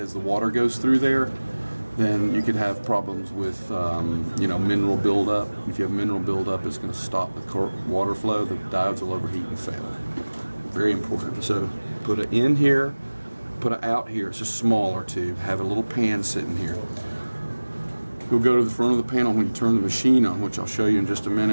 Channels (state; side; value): inverted; both; correlation -1.00